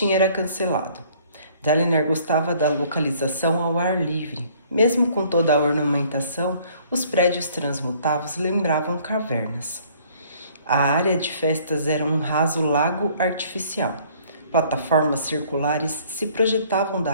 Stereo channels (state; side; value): inverted; both; correlation -0.58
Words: era cancelado. Dalinar gostava da localização ao ar livre. Mesmo com toda a ornamentação, os prédios transmutados lembravam cavernas. A área de festas era um raso lago artificial. Plataformas circulares se projetavam da